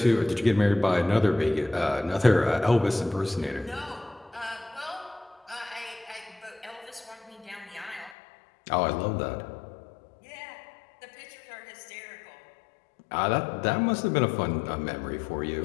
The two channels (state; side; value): drops out; right; at 8.2 s